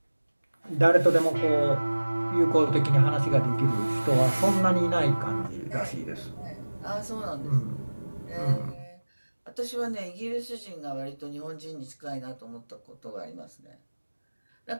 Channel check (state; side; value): inverted; both; correlation -1.00